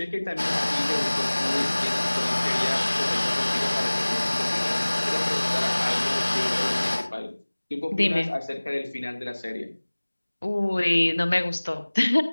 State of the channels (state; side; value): inverted; both; correlation -1.00